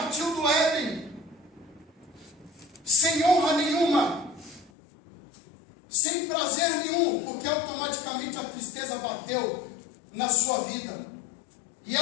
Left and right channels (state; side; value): drops out; right; at 4.7 s